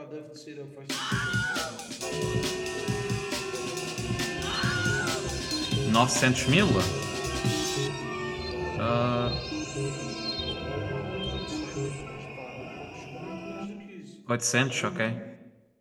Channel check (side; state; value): both; identical; correlation 1.00